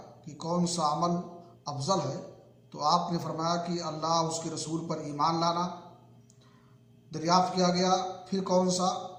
کہ کون سا عمل افضل ہے، تو آپ نے فرمایا کہ اللہ اس کے رسول پر ایمان لانا۔ دریافت کیا گیا پھر کون سا؟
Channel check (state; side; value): identical; both; correlation 1.00